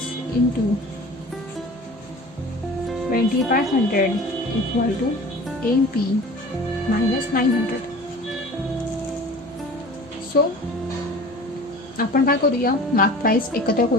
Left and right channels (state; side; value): normal; both; correlation 0.41